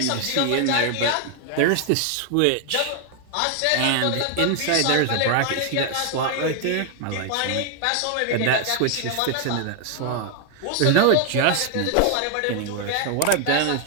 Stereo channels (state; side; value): different; both; correlation 0.00